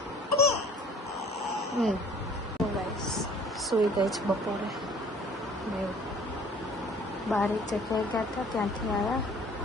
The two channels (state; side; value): normal; both; correlation 0.52